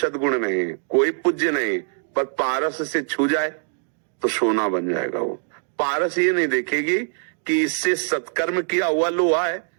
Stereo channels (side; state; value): left; silent; 56 dB below the other